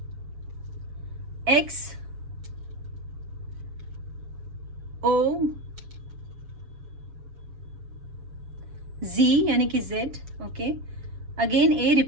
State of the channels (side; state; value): left; late; 7.1 ms